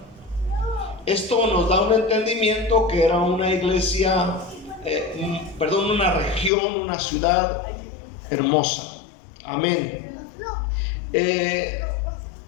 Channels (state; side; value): drops out; right; at 6.5 s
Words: Esto nos da un entendimiento que era una iglesia, una región, una ciudad hermosa. Amén.